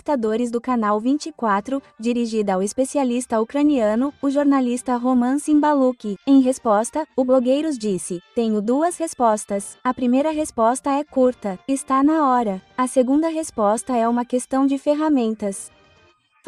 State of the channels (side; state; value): both; identical; correlation 1.00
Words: do canal 24, dirigida ao especialista ucraniano, o jornalista Roman Simbaluk. Em resposta, o blogueiros disse: "Tenho 2 respostas. A primeira resposta é curta, está na hora. A segunda resposta é uma questão de ferramentas."